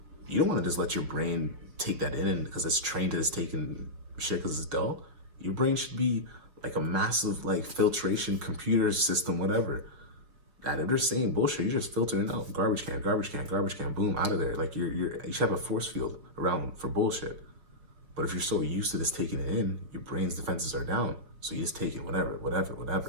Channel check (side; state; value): left; late; 6.4 ms